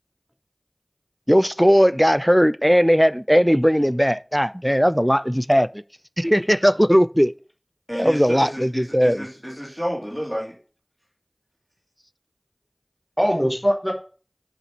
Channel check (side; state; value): both; identical; correlation 1.00